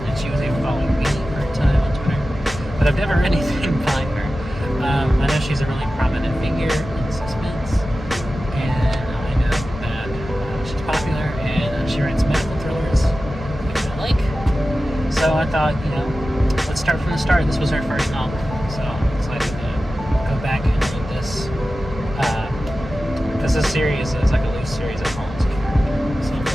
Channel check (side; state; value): both; normal; correlation 0.94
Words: and she was even following me for a time on Twitter. But I've never read anything by her. I know she's a really prominent figure in suspense, and I know that she's popular, and she writes medical thrillers, which I like. So I thought, let's start from the start. This was her first novel, so I'm excited to go back and read this. Because this series is like a loose series of Holmes' character, so I'm